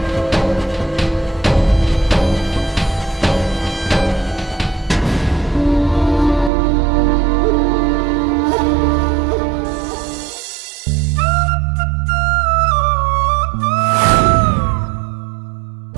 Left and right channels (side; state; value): left; drops out; at 6.5 s